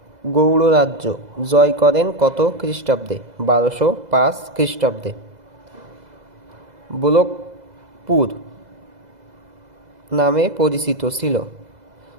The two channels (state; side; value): late; left; 2.0 ms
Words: গৌড় রাজ্য জয় করেন কত খ্রিস্টাব্দে? 1205 খ্রিস্টাব্দে। বোলকপুর নামে